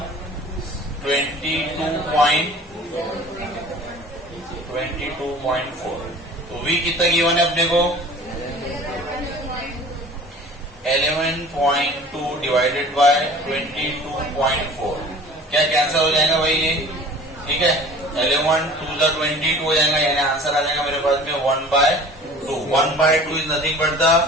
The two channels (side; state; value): both; normal; correlation 0.44